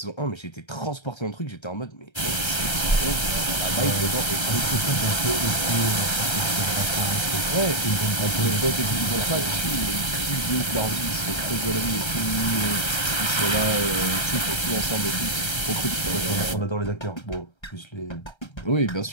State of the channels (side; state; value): right; late; 1.3 ms